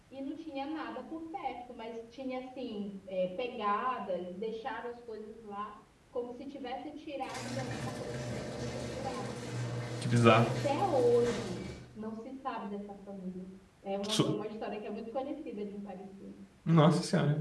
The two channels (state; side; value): identical; both; correlation 1.00